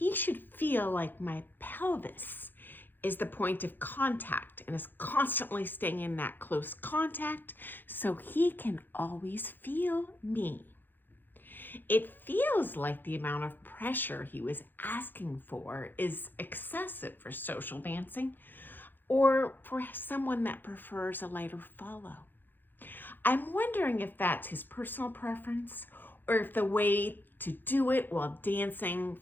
should feel like my pelvis is the point of contact and is constantly staying in that close contact so he can always feel me. It feels like the amount of pressure he was asking for is excessive for social dancing or for someone that prefers a lighter follow. I'm wondering if that's his personal preference or if the way to do it while dancing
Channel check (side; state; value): right; late; 0.092 ms